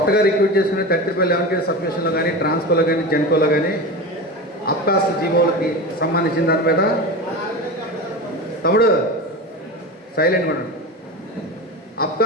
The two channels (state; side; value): normal; both; correlation 0.26